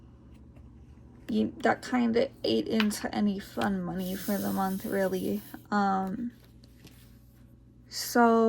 that kind of ate into any fun money for the month, really.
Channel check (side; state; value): both; identical; correlation 1.00